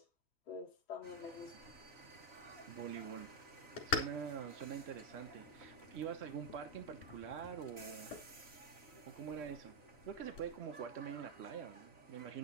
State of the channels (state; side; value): late; right; 3.1 ms